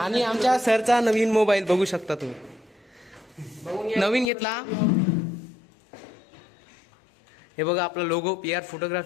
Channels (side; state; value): right; drops out; at 4.3 s